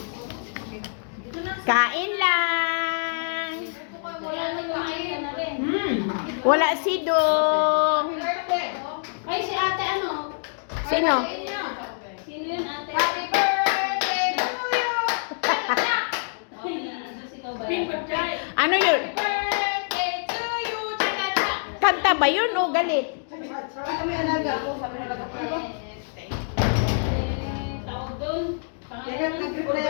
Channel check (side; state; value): right; silent; digital silence